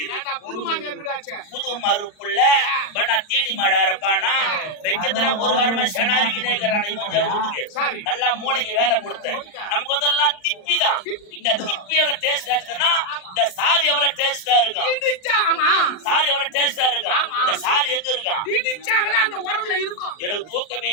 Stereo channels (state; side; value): late; right; 39 ms